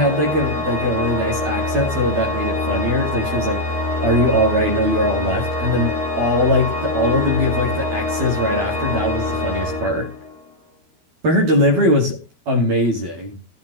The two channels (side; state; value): left; late; 13 ms